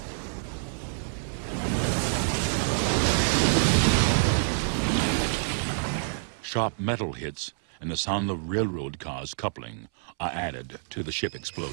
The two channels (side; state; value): left; silent; 60 dB below the other